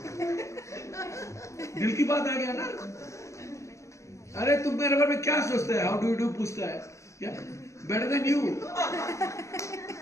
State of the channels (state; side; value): late; right; 0.14 ms